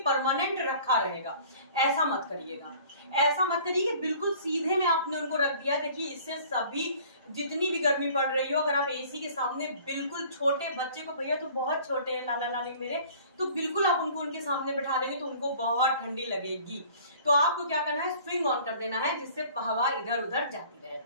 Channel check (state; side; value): inverted; both; correlation -0.50